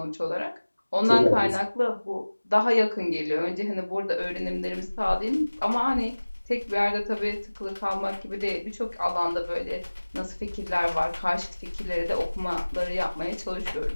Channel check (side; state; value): both; inverted; correlation -1.00